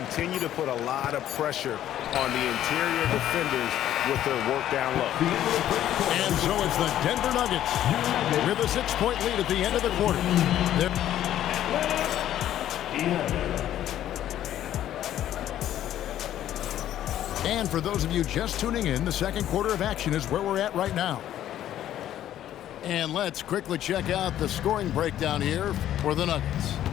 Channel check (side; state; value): right; quieter; 11.9 dB